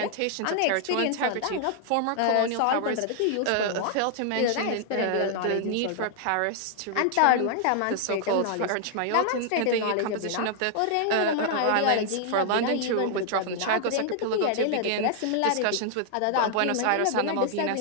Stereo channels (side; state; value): both; different; correlation 0.00